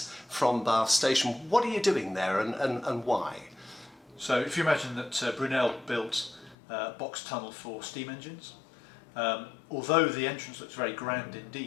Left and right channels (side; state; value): right; drops out; at 6.6 s